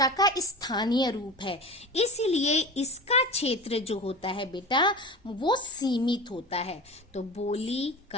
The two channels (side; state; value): both; normal; correlation 0.32